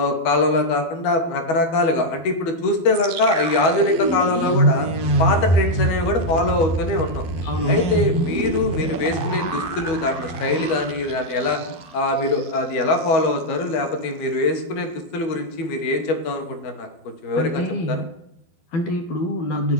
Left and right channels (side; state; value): right; late; 12 ms